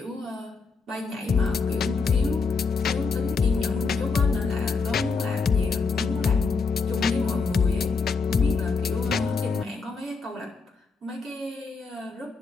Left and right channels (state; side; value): quieter; right; 4.6 dB